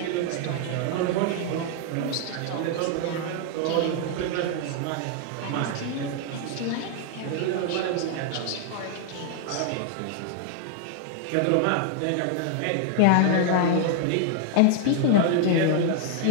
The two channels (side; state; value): both; different; correlation 0.00